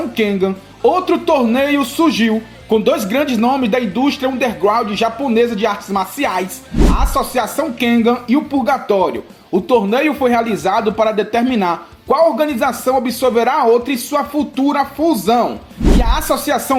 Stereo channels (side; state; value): both; identical; correlation 1.00